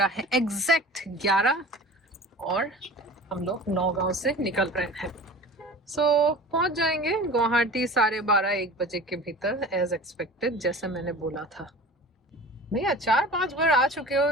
है एग्जैक्ट 11 और हम लोग नौगांव से निकल रहे हैं। सो पहुंच जाएंगे गुवाहाटी 12:30-1 बजे के भीतर, एज एक्सपेक्टेड, जैसे मैंने बोला था। भैया 4-5 बार आ चुके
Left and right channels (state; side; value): normal; both; correlation 0.39